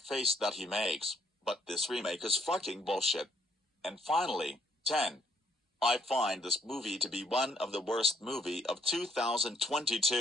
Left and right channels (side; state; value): both; normal; correlation 0.70